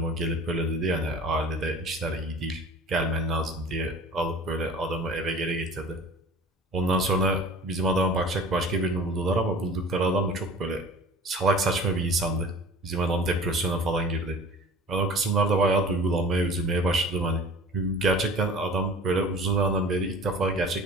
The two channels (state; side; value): normal; both; correlation 0.42